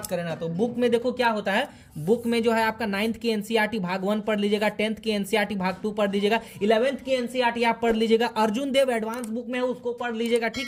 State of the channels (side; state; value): both; identical; correlation 1.00